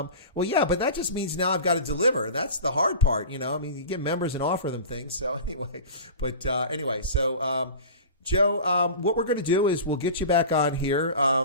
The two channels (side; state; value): both; inverted; correlation -0.34